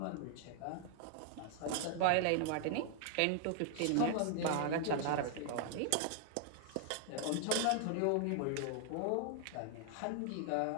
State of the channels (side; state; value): both; different; correlation 0.00